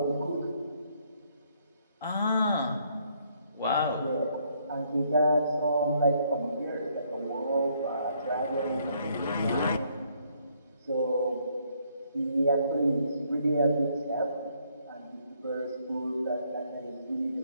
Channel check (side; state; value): both; inverted; correlation -0.69